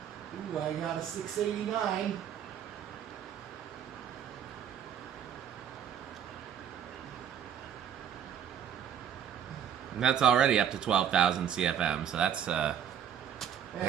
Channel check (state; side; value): quieter; left; 9.0 dB